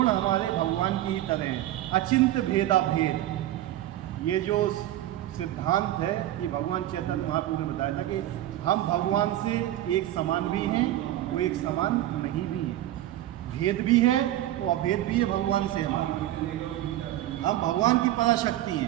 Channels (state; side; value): quieter; left; 14.0 dB